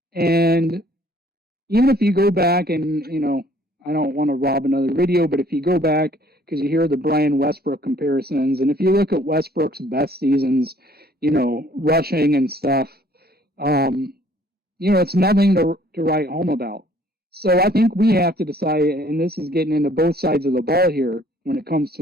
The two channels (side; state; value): both; normal; correlation 0.59